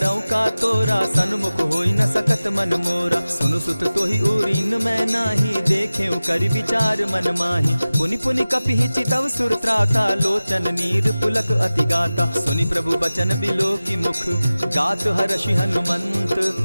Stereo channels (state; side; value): inverted; both; correlation -0.97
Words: का तोरा, सन्मुख होई न सकत मन मोरा। सुनु सुत तोहि उरीन मैं नाही, देखे करि विचार मन माही। पुनि पुनि कपिहि चितव सुर त्राता, लोचन नीर पुलक अति गाता। सुनि प्रभु बचन बिलो की मुख, गात हर्षि हनुमंत।